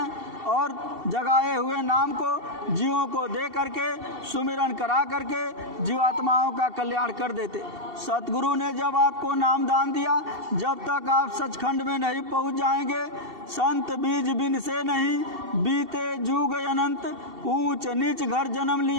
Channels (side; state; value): left; late; 2.7 ms